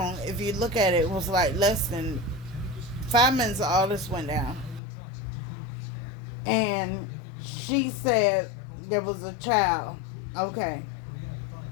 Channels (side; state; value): right; drops out; at 4.8 s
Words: If you look at it, it was like less than 5 minutes all this went down. And she said there was a child. Okay.